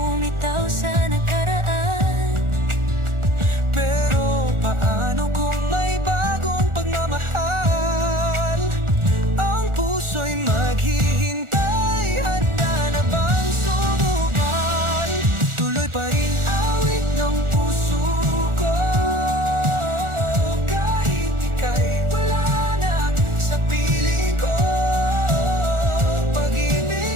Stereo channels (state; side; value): late; left; 1.4 ms